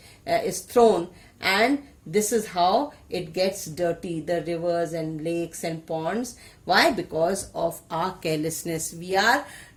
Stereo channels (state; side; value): identical; both; correlation 1.00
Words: is thrown, and this is how it gets dirty, the rivers and lakes and ponds. Why? Because of our carelessness. We are